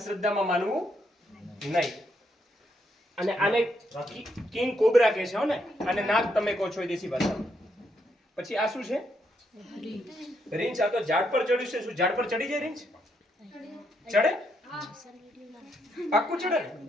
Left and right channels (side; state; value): both; normal; correlation 0.77